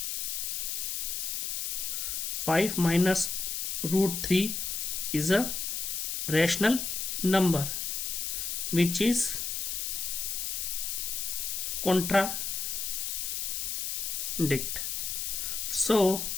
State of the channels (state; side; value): noise; left; hiss, 2 dB below the sound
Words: 5 minus √3 is a rational number which is contradict. So